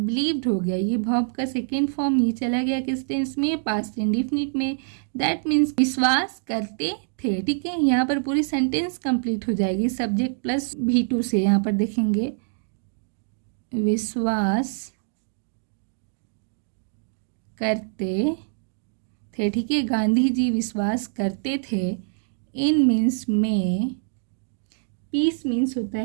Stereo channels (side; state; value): left; silent; digital silence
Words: हो गया, ये वर्ब का सेकेंड फॉर्म ये चला गया किस टेंस में, पास्ट इंडेफिनिट में। दैट मीन्स विश्वास करते थे, ठीक है। यहाँ पर पूरी सेंटेंस कंप्लीट हो जाएगी सब्जेक्ट प्लस V2 से। यहाँ पर देखेंगे विश्वास करते थे, ठीक है। गांधी जी विश्वास करते थे। इन मीन्स में, पीस मीन्स होता